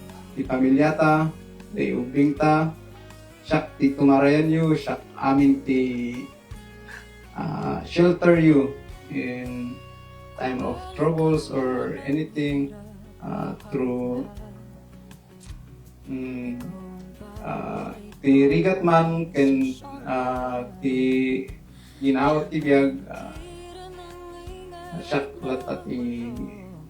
pamilyata ti ubing ta Shakti tumarayan you amin ti shelter you in time of troubles or anything through ti rigat man ken ti ginawat ti biyag shaklat at i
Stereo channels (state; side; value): identical; both; correlation 1.00